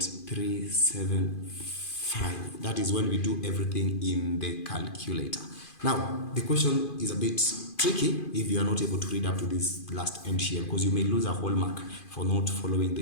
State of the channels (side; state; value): right; late; 2.5 ms